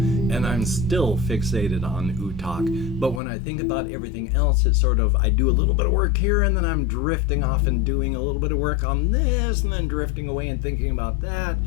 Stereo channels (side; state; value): right; drops out; at 3.2 s